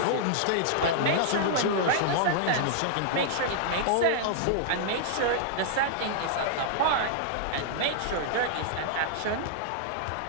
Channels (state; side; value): different; both; correlation -0.01